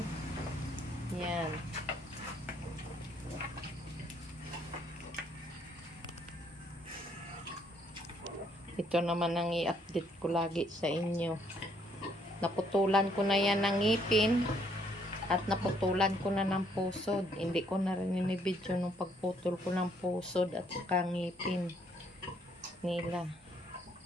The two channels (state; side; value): normal; both; correlation 0.68